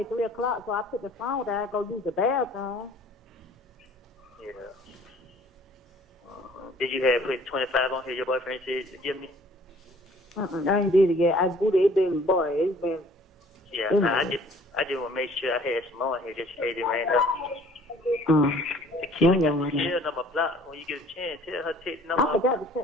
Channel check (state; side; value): normal; both; correlation 0.54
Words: at 3 o'clock, so I put the phone down, go use the bathroom. Yeah. Did you have put 25 on here? Your boyfriend said to give me? I ain't did it yet. I do it been, boy, it's been. Yeah, nah, I just want to make sure I had some on here just in case it ran up. The key Yeah, got the tail number block. When you get a chance, tell her to take the I number. forgot to